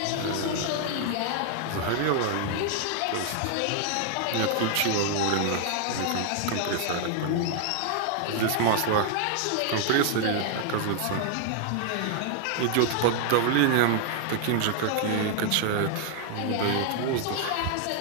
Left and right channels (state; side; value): different; both; correlation 0.00